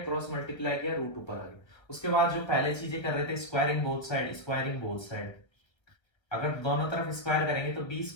मल्टीप्लाई किया, रूट ऊपर आ गया। उसके बाद जो पहले चीजें कर रहे थे, squaring both side, squaring both side, अगर दोनों तरफ स्क्वायर करेंगे तो B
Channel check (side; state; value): right; late; 1.4 ms